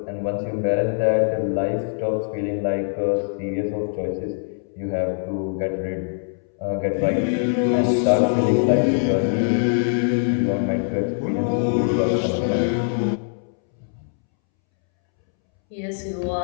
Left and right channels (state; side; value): silent; right; 64 dB below the other